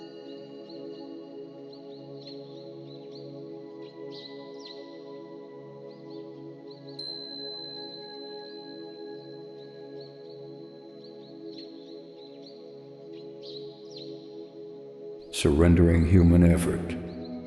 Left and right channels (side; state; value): both; identical; correlation 1.00